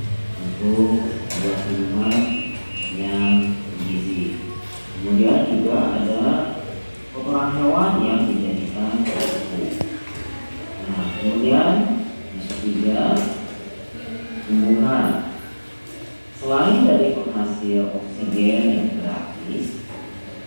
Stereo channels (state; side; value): inverted; both; correlation -1.00